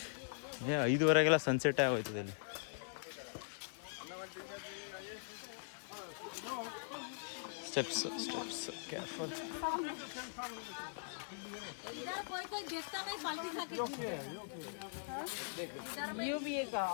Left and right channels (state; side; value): silent; right; digital silence